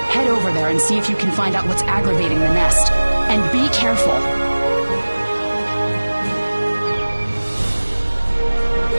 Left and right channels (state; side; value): inverted; both; correlation -1.00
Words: Head over there and see if you can find out what's aggravating the nest. And be careful.